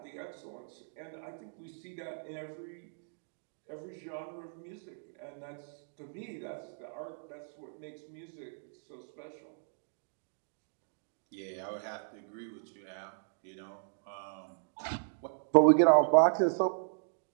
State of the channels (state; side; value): silent; left; digital silence